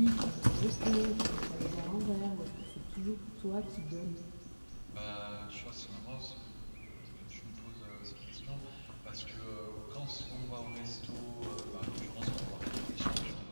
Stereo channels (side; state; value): both; inverted; correlation -1.00